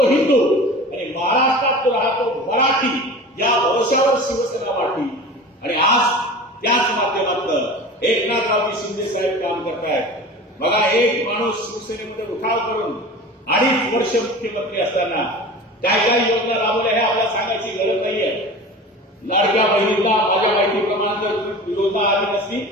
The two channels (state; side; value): normal; both; correlation 0.36